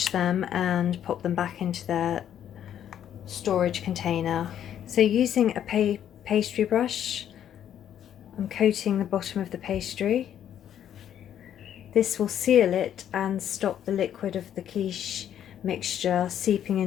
them and pop them back into their storage container. So using a pastry brush, I'm coating the bottom of the pastry. This will seal it and stop the liquid of the quiche mixture seeping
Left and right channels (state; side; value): quieter; right; 10.1 dB